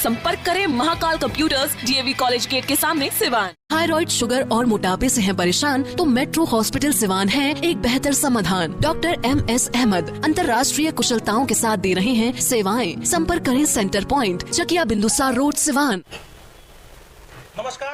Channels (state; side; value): identical; both; correlation 1.00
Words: करें Mahakal computers, DAV college gate के सामने, सिवान। थायराइड, शुगर और मोटापे से हैं परेशान तो मेट्रो हॉस्पिटल सिवान है एक बेहतर समाधान। डॉक्टर MS अहमद अंतर्राष्ट्रीय कुशलताओं के साथ दे रहे हैं सेवाएं। संपर्क करें centre point, Chakiya Bindusar road, Siwan.